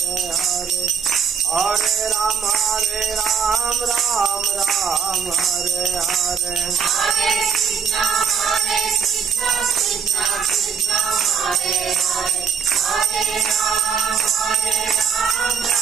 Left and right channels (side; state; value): left; quieter; 6.3 dB